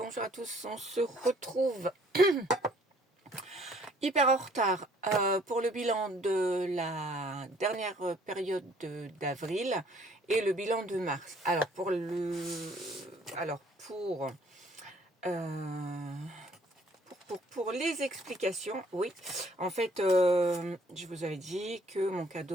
à tous. On se retrouve hyper en retard pour le bilan de la dernière période d'avril et le bilan de mars. Alors pour les explications, oui, en fait, je vous avais dit que mon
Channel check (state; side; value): normal; both; correlation 0.60